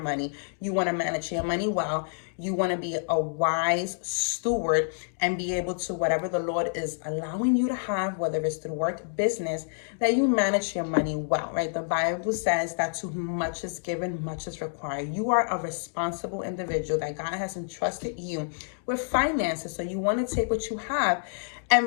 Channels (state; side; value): silent; right; digital silence